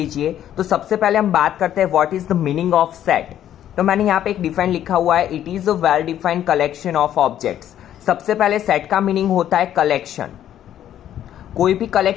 तो सबसे पहले हम बात करते हैं what is the meaning of set. तो मैंने यहाँ पे एक डिफाइन लिखा हुआ है, it is a well defined collection of objects. सबसे पहले सेट का मीनिंग होता है कलेक्शन. कोई भी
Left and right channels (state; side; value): quieter; right; 11.1 dB